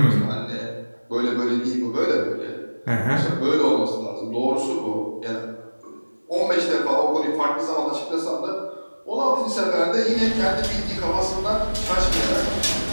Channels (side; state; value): both; inverted; correlation -1.00